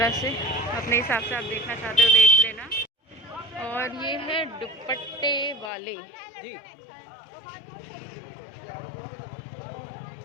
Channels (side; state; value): right; drops out; at 5.7 s